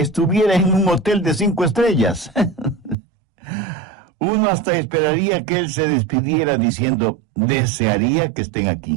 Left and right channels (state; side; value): drops out; left; at 3.0 s